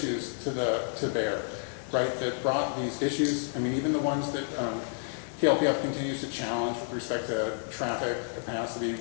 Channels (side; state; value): right; silent; digital silence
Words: to bear, right? That brought these issues, I mean, even the ones that KLPF continues to challenge with respect to traffic, capacity,